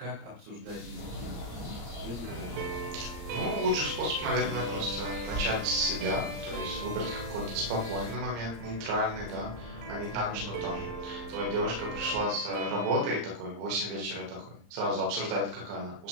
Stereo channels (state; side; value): late; left; 34 ms